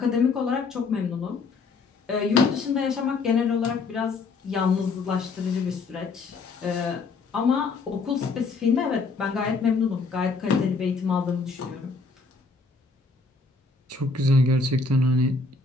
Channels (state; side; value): quieter; right; 4.2 dB